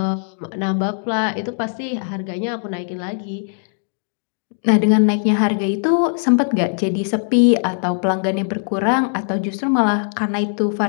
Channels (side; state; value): right; silent; digital silence